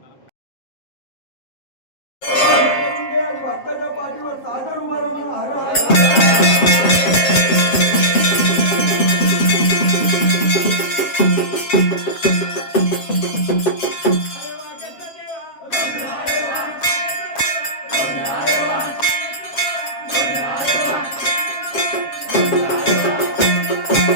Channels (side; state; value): right; late; 7.4 ms